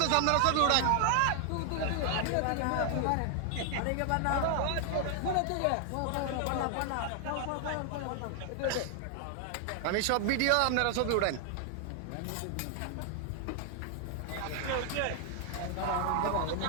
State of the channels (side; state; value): both; different; correlation 0.00